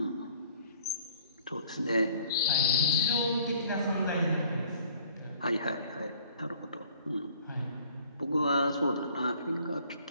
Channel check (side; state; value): both; inverted; correlation -0.56